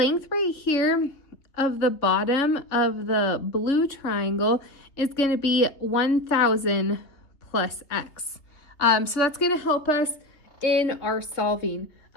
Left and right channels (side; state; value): right; late; 3.3 ms